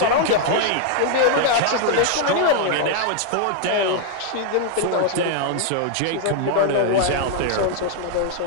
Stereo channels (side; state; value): both; different; correlation 0.00